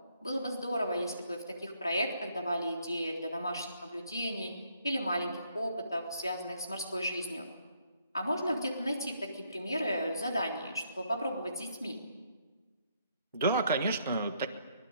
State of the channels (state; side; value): inverted; both; correlation -0.71